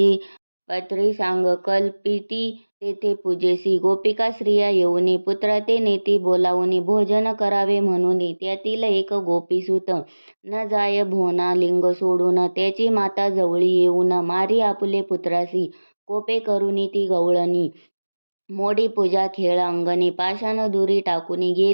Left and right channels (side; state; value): both; inverted; correlation -1.00